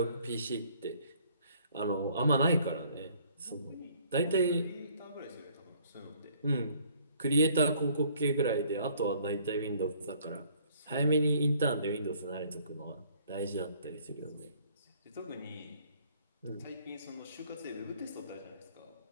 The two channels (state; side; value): inverted; both; correlation -0.59